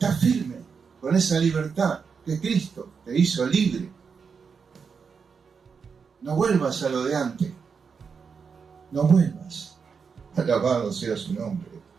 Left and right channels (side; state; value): left; quieter; 5.8 dB